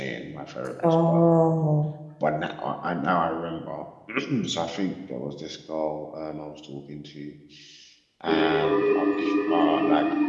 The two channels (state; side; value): identical; both; correlation 1.00